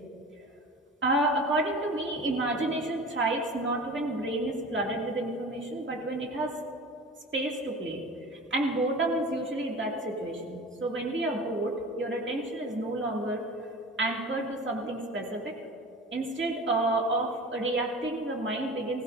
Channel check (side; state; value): both; normal; correlation 0.37